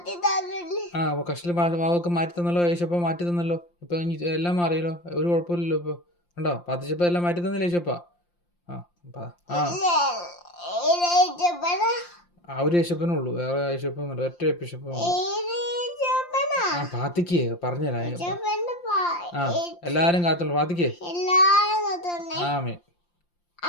തന്നില്ലേ? കഷ്ടില് വാവൊക്കെ മാറ്റി തന്നല്ലോ, യേശപ്പ മാറ്റി തന്നല്ലോ. ഇപ്പൊ എല്ലാം മാറിയല്ലോ, ഒരു കുഴപ്പമില്ലല്ലോ. ഇപ്പൊ കണ്ടോ, പ്രാർത്ഥിച്ചപ്പോ എല്ലാം മാറ്റി തന്നില്ല യേശപ്പ. ഒരു യേശപ്പനുള്ളൂ, വേറെ യേശപ്പന്നുണ്ട്, ഒറ്റ യേശപ്പ. പ്രാർത്ഥിക്കേ, പറഞ്ഞുതരാ. എല്ലാരും കാത്തുള്ളൂ, പ്രാർത്ഥിക്കേ. ആമേ.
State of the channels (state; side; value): late; right; 5.7 ms